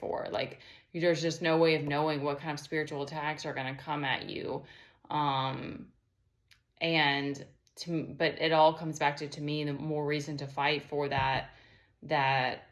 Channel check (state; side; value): identical; both; correlation 1.00